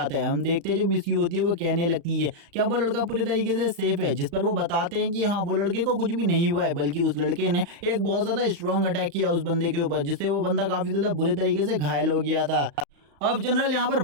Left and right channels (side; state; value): left; late; 35 ms